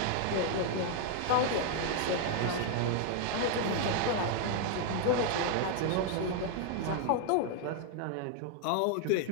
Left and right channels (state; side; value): different; both; correlation 0.00